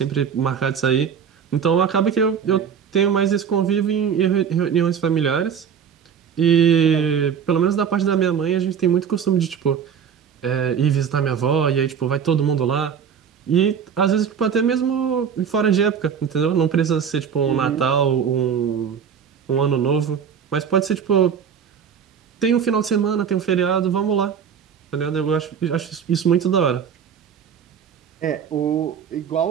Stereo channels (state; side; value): quieter; left; 7.4 dB